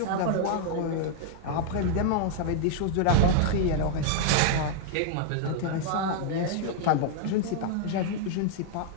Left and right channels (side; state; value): both; different; correlation 0.00